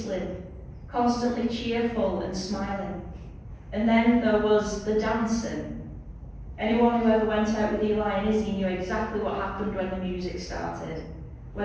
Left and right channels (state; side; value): identical; both; correlation 1.00